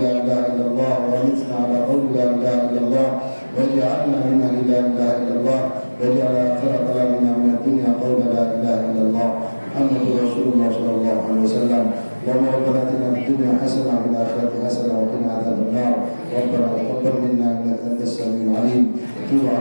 la ilaha illallah wa mitna ala qawli la ilaha illallah wa ja'alna min ahli la ilaha illallah wa ja'ala akhira kalamina min ad-dunya qawla la ilaha illallah Muhammadu Rasulullah sallallahu alaihi wasallam. Allahumma rabbana atina fid dunya hasanah wa fil akhirati hasanah wa qina adzaban nar. Rabbana taqabbal minna innaka antas samiul alim. Tub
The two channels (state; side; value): inverted; both; correlation -1.00